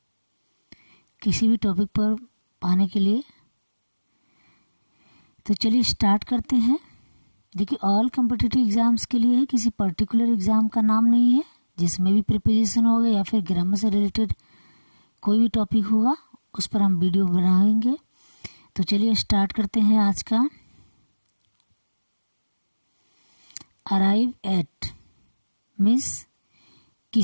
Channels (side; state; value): both; inverted; correlation -1.00